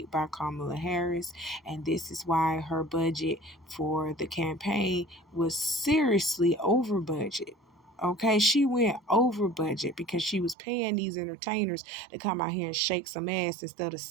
by Kamala Harris, and this is why her budget for the campaign was seriously over budget. Okay, she went over budget because she was paying these entertainers to come out here and shake some ass instead of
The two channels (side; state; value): left; drops out; at 10.6 s